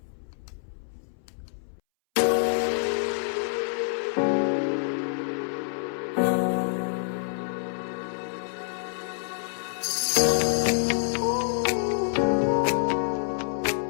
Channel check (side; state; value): right; silent; 60 dB below the other